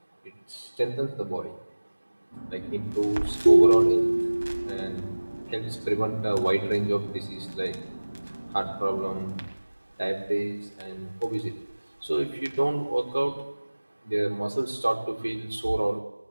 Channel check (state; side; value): inverted; both; correlation -1.00